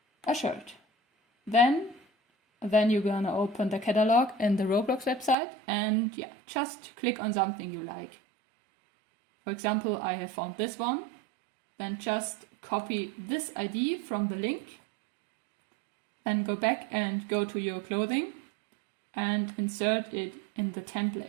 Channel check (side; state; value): left; drops out; at 5.4 s